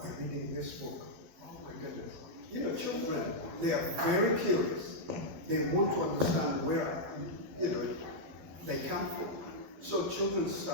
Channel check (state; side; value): late; left; 12 ms